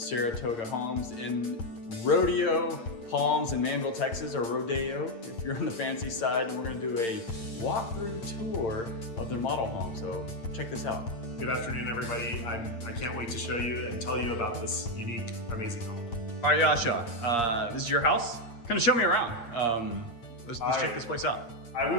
Homes in Rodeo Palms in Manville, Texas, or Rodeo if you're on the fancy side, and we're going to do a walkthrough tour of their model home. So check this out. Good afternoon, everybody. I can't wait to show you and tell you about this unique, amazing home. All right, Yasha, this is your house. Kind of show me around. Let's check this place out. I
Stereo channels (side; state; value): right; late; 8.7 ms